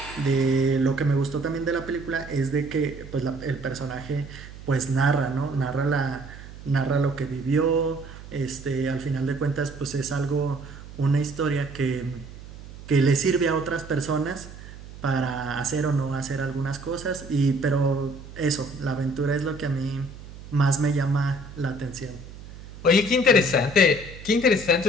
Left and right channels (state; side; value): noise; right; hum, 15 dB below the sound